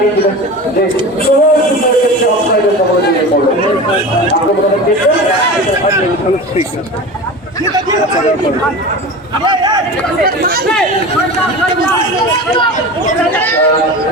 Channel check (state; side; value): normal; both; correlation 0.31